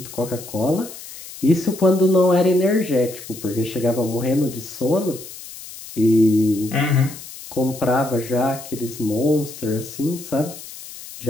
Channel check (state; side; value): noise; left; hiss, 14 dB below the sound